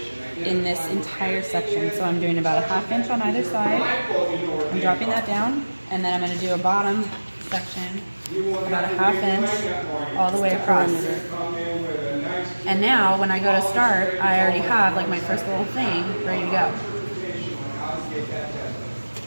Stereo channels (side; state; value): both; inverted; correlation -1.00